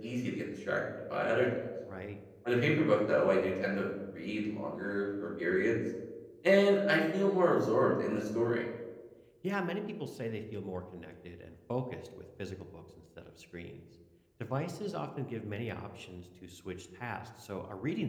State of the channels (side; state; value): both; identical; correlation 1.00